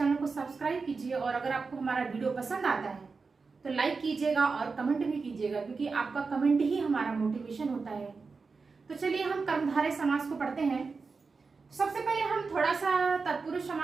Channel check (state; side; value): quieter; left; 4.5 dB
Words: को सब्सक्राइब कीजिए, और अगर आपको हमारा वीडियो पसंद आता है तो लाइक कीजिएगा और कमेंट भी कीजिएगा, क्योंकि आपका कमेंट ही हमारा मोटिवेशन होता है। तो चलिए हम कर्मधारय समास को पढ़ते हैं। सबसे पहले हम थोड़ा सा तत्पुरुष